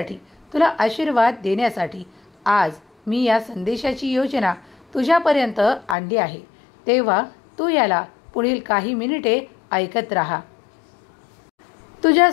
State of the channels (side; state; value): right; drops out; at 6.0 s